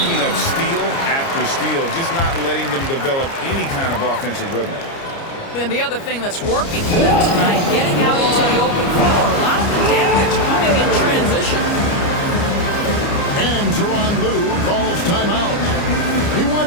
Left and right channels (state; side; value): late; right; 29 ms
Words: up steal after steal, just not letting them develop any kind of offensive rhythm. And the other thing that's working for them tonight, getting out into the open floor. A lot of the damage coming in transition. And Tyronn Lue calls timeout. He